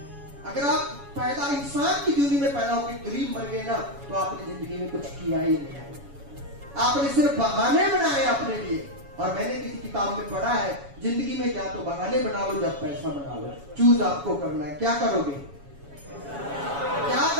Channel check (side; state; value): left; late; 7.1 ms